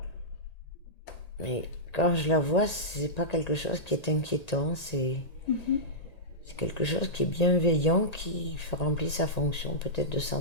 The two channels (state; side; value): late; right; 1.9 ms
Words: quand je la vois, c'est pas quelque chose qui est inquiétant, c'est quelque chose qui est bienveillant, qui remplit sa fonction peut-être de